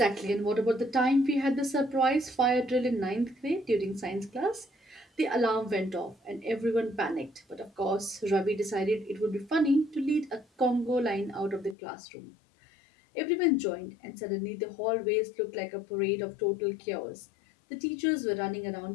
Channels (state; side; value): drops out; right; at 11.8 s